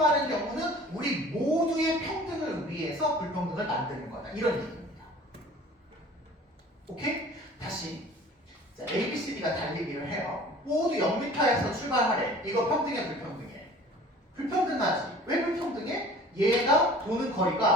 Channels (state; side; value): normal; both; correlation 0.46